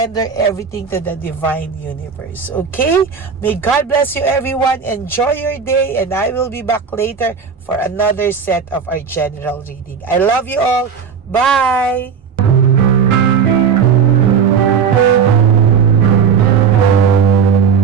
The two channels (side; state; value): left; quieter; 6.5 dB